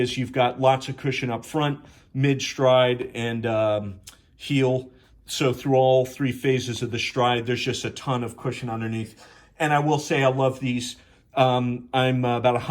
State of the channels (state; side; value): identical; both; correlation 1.00